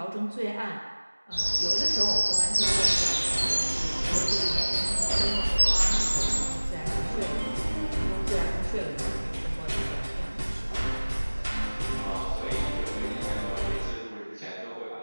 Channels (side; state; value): both; inverted; correlation -1.00